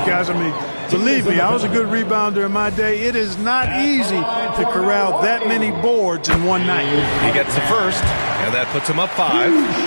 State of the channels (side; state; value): both; inverted; correlation -1.00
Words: guys. I mean, believe me, I was a good rebounder in my day. It is not easy to corral that many boards in one night. He gets the first, and that puts him up